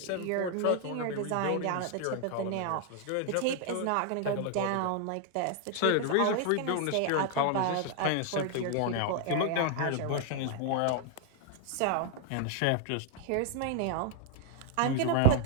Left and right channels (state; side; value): different; both; correlation 0.00